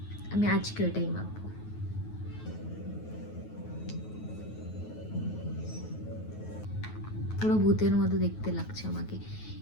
আমি আজকে এটাই মাখবো। পুরো ভূতের মতো দেখতে লাগছে আমাকে,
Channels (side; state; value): right; late; 9.4 ms